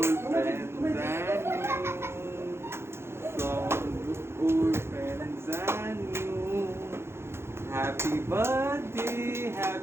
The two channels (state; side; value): late; left; 0.12 ms